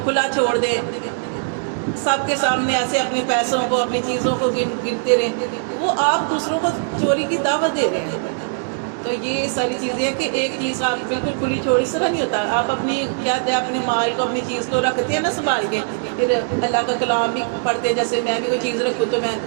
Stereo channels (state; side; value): silent; left; digital silence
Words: کھلا چھوڑ دیں، سب کے سامنے ایسے اپنے پیسوں کو، اپنی چیزوں کو گنتے رہیں، وہ آپ دوسروں کو چوری کی دعوت دے رہے ہیں. تو یہ ساری چیزیں ہیں کہ ایک چیز آپ بالکل کھلی چھوڑ، اس طرح نہیں ہوتا. آپ اپنی کیا ہے اپنے مال کو، اپنی چیز کو رکھتے ہیں نا سنبھال کے، پھر اللہ کا کلام بھی پڑھتے ہیں. جیسے میں بھی کوئی چیز رکھوں تو میں